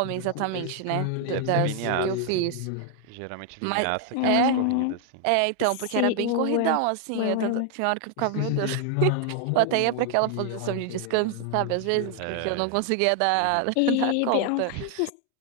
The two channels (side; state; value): both; different; correlation 0.00